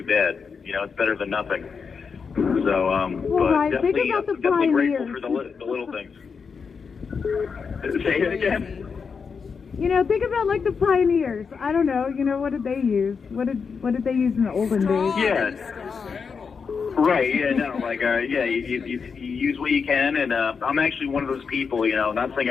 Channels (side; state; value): right; quieter; 5.7 dB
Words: bad. It's better than nothing. So, but definitely grateful for the little things. Say it again. Think about like the pioneers. I don't know. What did they use? What did they use in the olden days? Yeah. Right. Yeah. No. Like. Yeah. You use what you can, and I'm actually one of those people. Not saying